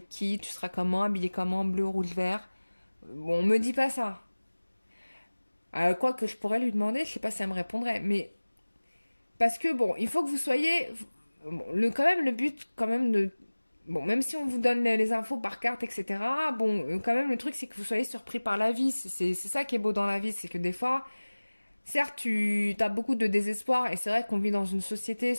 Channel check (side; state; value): both; inverted; correlation -1.00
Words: qui, tu seras comment, habillé comment, bleu, rouge, vert. Bon, on me dit pas ça. Quoi que je pourrais lui demander, je sais pas si elle me répondrait. Mais parce que bon, il faut que vous soyez bon, quand même le but quand même de bon, même si on vous donne les infos par carte, etc. Bon, quand même le truc c'est que vous soyez surpris par la vie. C'est ça qui est beau dans la vie, c'est que des fois, certes, tu as beaucoup de désespoir et c'est vrai qu'on vit dans une société,